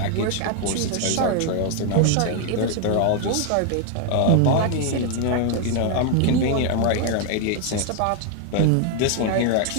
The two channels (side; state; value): both; different; correlation 0.00